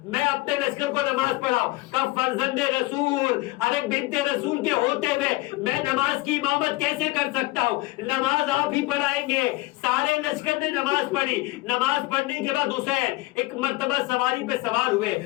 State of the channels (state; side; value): quieter; right; 21.0 dB